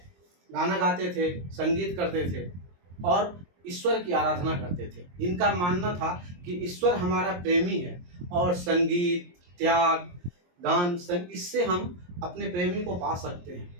गाना गाते थे, संगीत करते थे और ईश्वर की आराधना करते थे। इनका मानना था कि ईश्वर हमारा प्रेमी है और संगीत, त्याग, गान, इससे हम अपने प्रेमी को पा सकते हैं।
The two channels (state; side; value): late; left; 23 ms